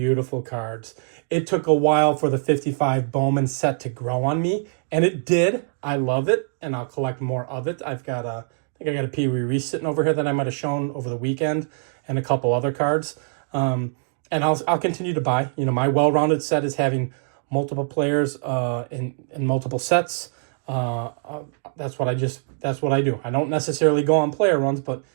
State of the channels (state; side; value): silent; left; digital silence